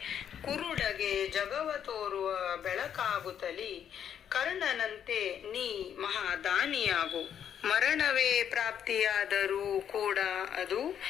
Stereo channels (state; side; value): quieter; right; 9.0 dB